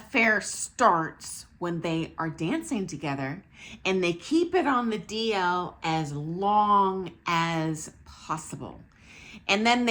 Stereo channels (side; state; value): both; identical; correlation 1.00